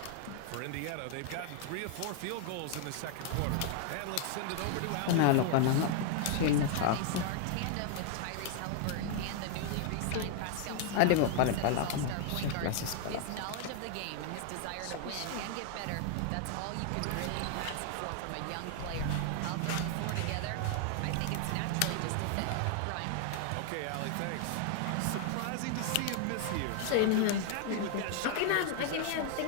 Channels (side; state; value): both; different; correlation 0.00